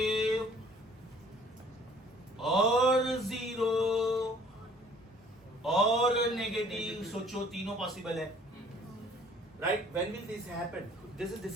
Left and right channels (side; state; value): both; normal; correlation 0.55